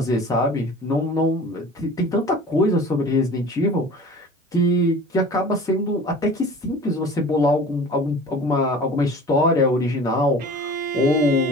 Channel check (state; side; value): normal; both; correlation 0.41